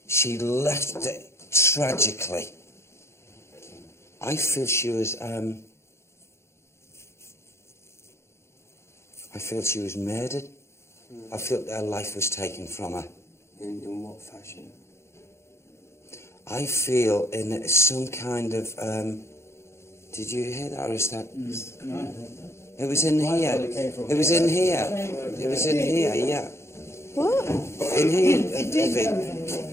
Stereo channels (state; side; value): late; right; 0.13 ms